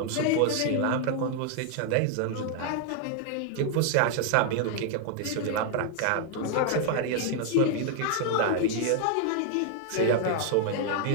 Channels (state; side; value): different; both; correlation 0.00